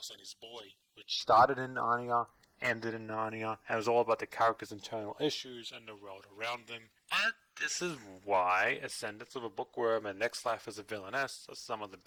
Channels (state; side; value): identical; both; correlation 1.00